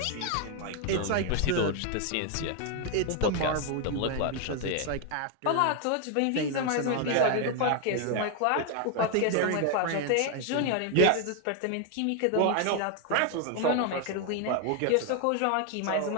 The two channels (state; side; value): different; both; correlation 0.01